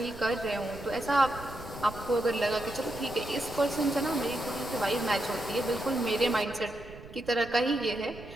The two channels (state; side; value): noise; right; rumble, 16 dB below the sound